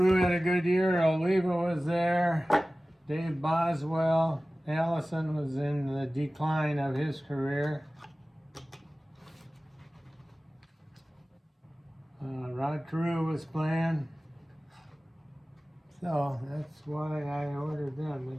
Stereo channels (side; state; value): both; normal; correlation 0.97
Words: had a good year. Oliva was there. Dave Boswell. Allison was in the decline of his career. Rod Carew was playing. So that's why I ordered them.